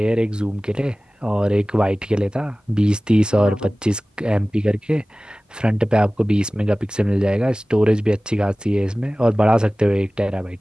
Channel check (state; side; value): normal; both; correlation 0.98